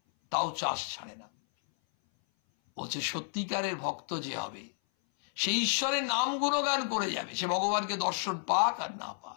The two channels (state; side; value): silent; right; 57 dB below the other